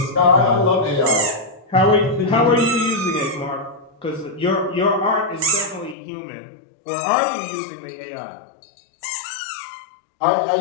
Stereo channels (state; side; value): drops out; right; at 6.0 s